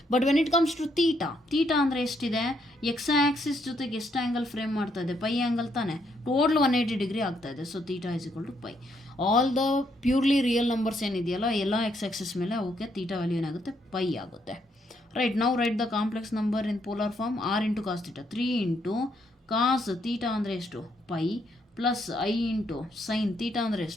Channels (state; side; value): normal; both; correlation 0.74